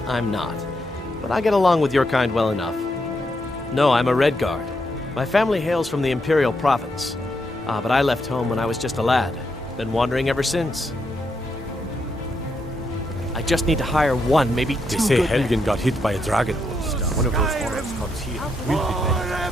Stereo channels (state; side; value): normal; both; correlation 0.80